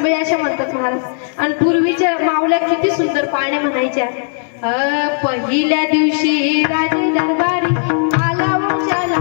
अशा म्हणतात महाराज. आणि पूर्वीच्या मावल्या किती सुंदर पाण्या म्हणायच्या. पहिल्या दिवशी राजे दरबारी आला वंशाला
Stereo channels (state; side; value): silent; right; 69 dB below the other